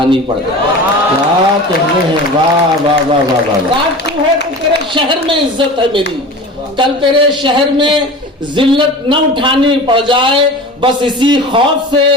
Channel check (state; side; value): normal; both; correlation 0.35